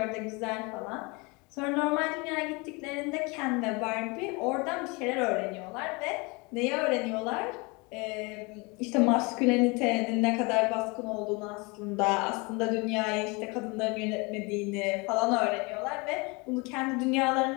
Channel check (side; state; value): right; quieter; 27.9 dB